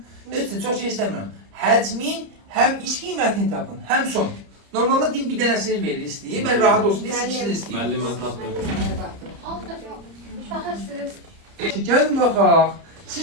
Üçün çox şey istəmirəm. Həcmin həm iç qiymətini tapın, həm son. Normalda din bir dənəsini verir istəyir, mən rahat olsun deyə ikisini istəyir. Müəllim mən tapmıyorum. Alt defa. Baxırsınız. Gəlin baxaq.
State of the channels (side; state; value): left; late; 30 ms